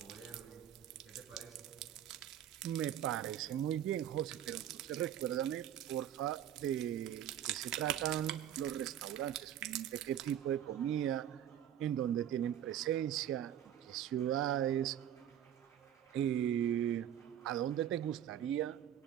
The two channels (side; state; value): left; quieter; 10.8 dB